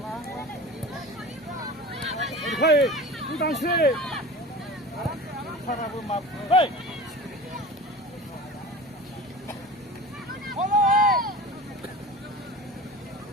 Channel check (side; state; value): both; normal; correlation 0.35